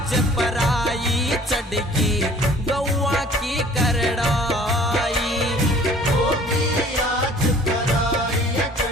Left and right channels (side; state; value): both; normal; correlation 0.51